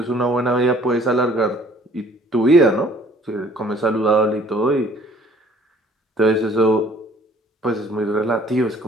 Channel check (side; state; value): both; normal; correlation 0.56